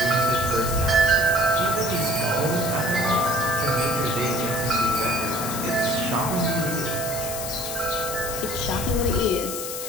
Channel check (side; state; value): left; noise; hiss, 6 dB below the sound